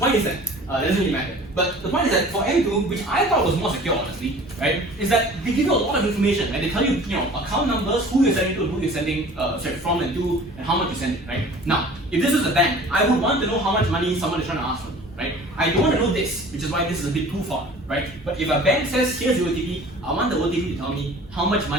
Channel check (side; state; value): both; normal; correlation 0.45